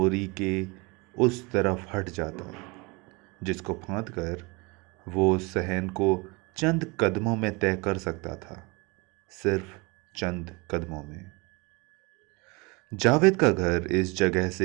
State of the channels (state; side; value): quieter; left; 26.9 dB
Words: के उस तरफ हट जाता, जिसको फांद कर वो सहन को चंद कदमों में तय कर सकता था। सिर्फ चंद कदमों में। जावेद का घर इस जगह